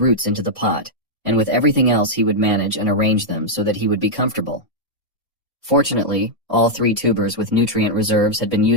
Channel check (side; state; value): both; normal; correlation -0.04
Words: into the pot, and with everything else he would manage and arrange them so that he would be comfortable. Fortunately, all 3 tubers with nutrient reserves had been